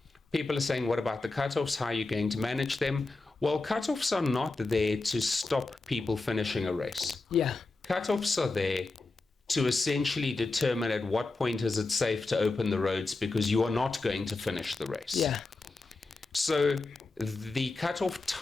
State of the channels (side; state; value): right; quieter; 3.5 dB